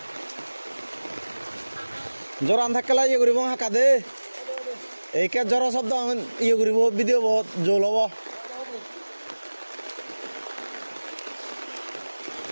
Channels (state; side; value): inverted; both; correlation -1.00